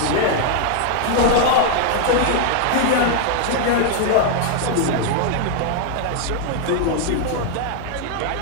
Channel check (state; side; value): different; both; correlation 0.00